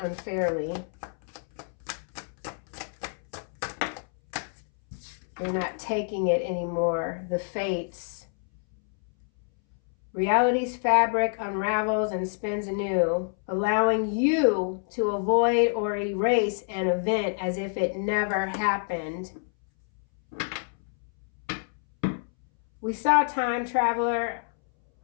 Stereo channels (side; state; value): right; silent; 60 dB below the other